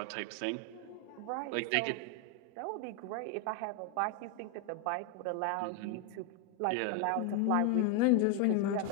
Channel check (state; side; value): different; both; correlation 0.01